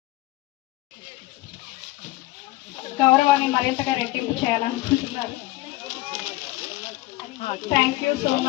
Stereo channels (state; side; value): quieter; right; 18.8 dB